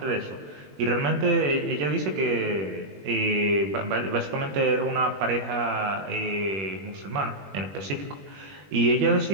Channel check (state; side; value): late; left; 21 ms